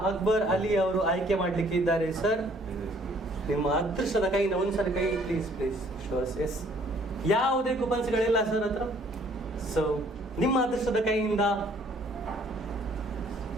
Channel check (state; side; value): normal; both; correlation 0.60